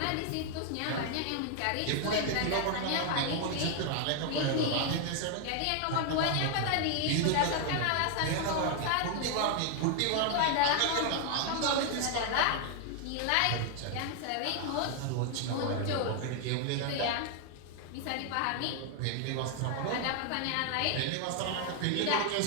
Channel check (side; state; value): both; different; correlation 0.00